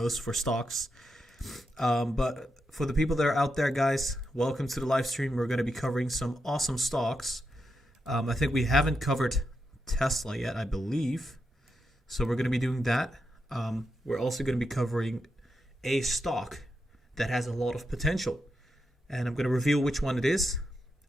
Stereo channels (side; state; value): both; normal; correlation 0.85